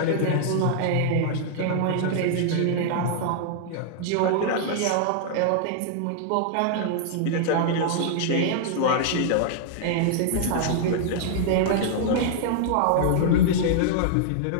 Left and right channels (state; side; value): different; both; correlation -0.01